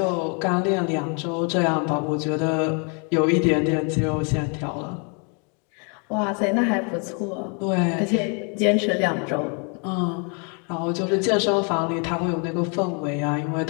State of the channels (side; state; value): right; quieter; 37.0 dB